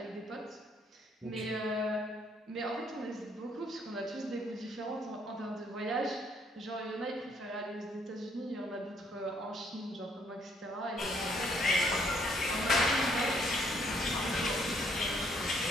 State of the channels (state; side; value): normal; both; correlation 0.67